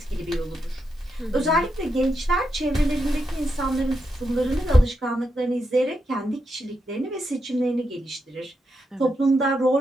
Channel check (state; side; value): normal; both; correlation 0.84